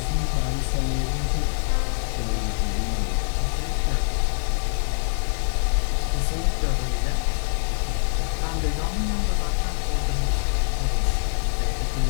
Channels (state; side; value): silent; right; 62 dB below the other